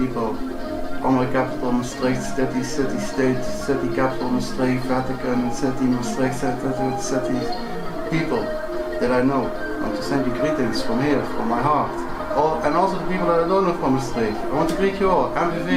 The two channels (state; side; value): identical; both; correlation 1.00